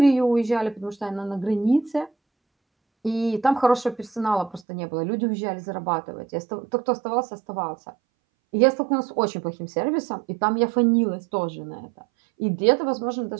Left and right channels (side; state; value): left; drops out; at 4.6 s